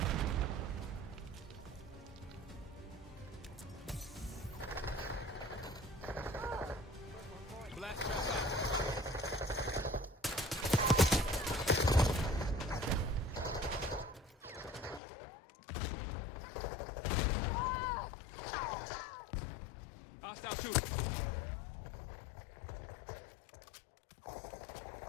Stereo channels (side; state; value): right; drops out; at 15.0 s